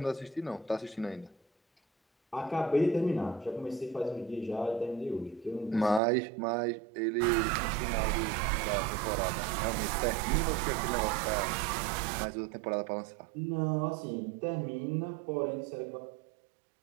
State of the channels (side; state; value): left; drops out; at 6.0 s